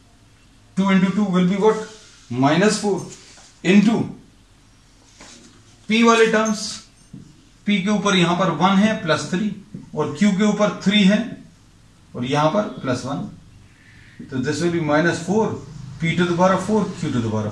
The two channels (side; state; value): both; identical; correlation 1.00